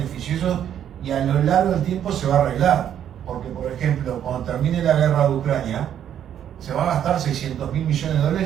y a lo largo del tiempo se va a arreglar. Porque, por ejemplo, cuando termine la guerra de Ucrania, se va a gastar 600.000 millones de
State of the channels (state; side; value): quieter; left; 9.9 dB